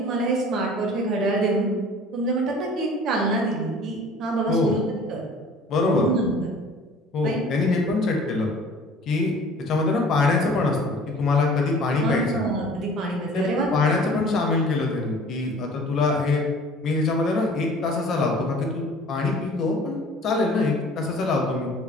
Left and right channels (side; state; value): both; normal; correlation 0.47